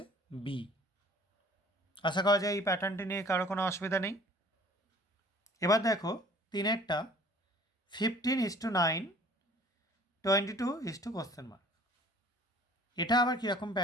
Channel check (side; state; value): both; normal; correlation 0.51